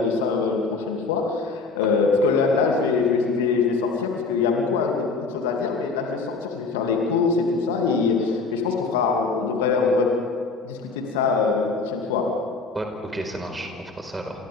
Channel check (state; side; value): quieter; right; 4.2 dB